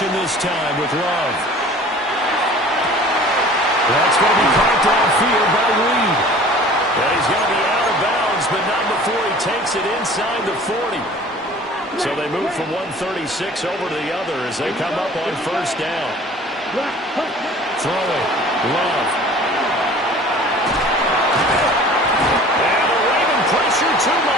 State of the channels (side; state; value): both; normal; correlation 0.46